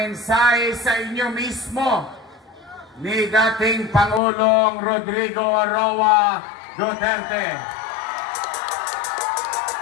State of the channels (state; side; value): drops out; right; at 4.2 s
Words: sa inyo mismo ni dating Pangulong Rodrigo Roa Duterte.